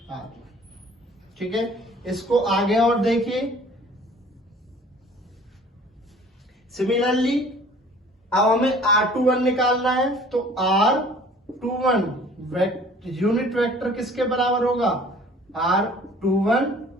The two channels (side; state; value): both; normal; correlation 0.51